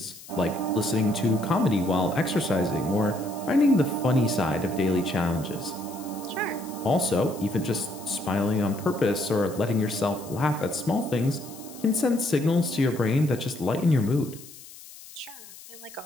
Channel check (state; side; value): noise; left; hiss, 18 dB below the sound